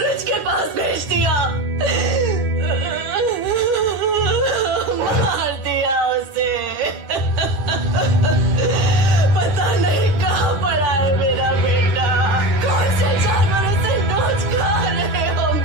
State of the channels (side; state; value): left; late; 9.7 ms